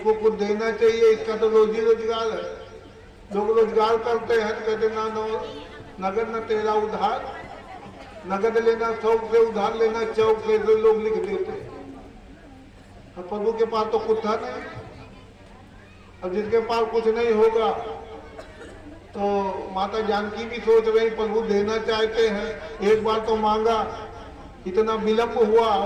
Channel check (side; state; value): both; identical; correlation 1.00